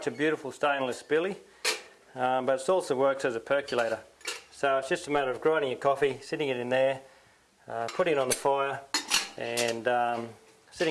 a beautiful stainless billy, but it also works as a percolator. So it's just a matter of grinding your coffee, sitting it in there, putting it on the fire, and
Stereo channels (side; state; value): both; identical; correlation 1.00